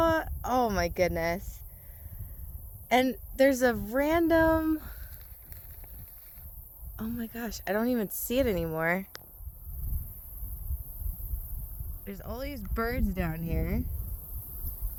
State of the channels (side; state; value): both; identical; correlation 1.00